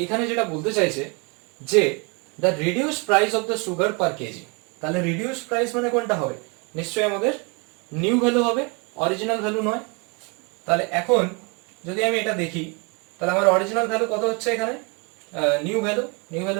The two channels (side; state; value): left; quieter; 31.7 dB